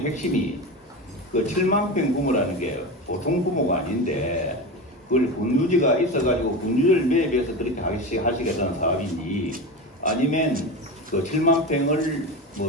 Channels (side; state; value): both; normal; correlation 0.23